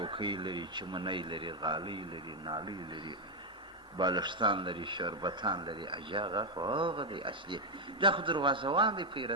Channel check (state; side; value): normal; both; correlation 0.02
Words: لري، چمنۍ لري، غالۍ لري، نالۍ لري، بالښتان لري، شربتان لري. اجاغه خو هغه دی اصلي. دا خو دروازهوان دی،